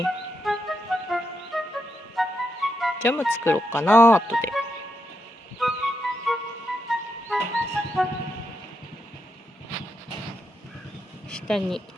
ジャム作ろうかな、後で。下に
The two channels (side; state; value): both; normal; correlation 0.83